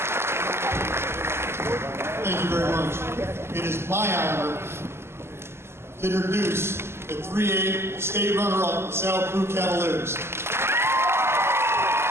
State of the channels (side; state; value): left; late; 0.12 ms